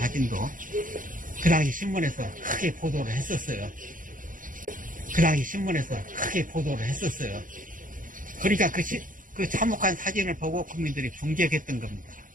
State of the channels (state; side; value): late; left; 0.39 ms